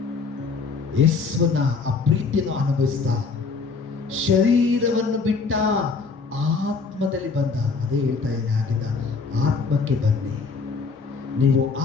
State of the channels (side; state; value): right; quieter; 4.7 dB